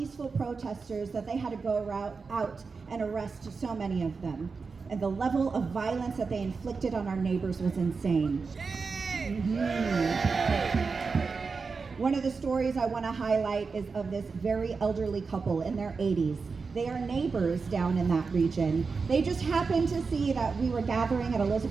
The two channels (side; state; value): left; quieter; 4.8 dB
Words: protesters that they had to go out and arrest so many of them. And the level of violence that they inflicted on our neighbors was insane. One of the stories I want to highlight is of this very elderly couple in their 80s. They are neighbors down in that region. They just happened to see that we were gathering at